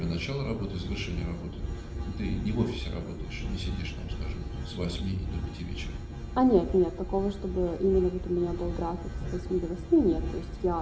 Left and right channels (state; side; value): identical; both; correlation 1.00